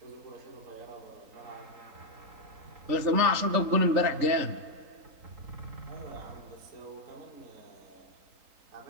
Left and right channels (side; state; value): left; late; 3.9 ms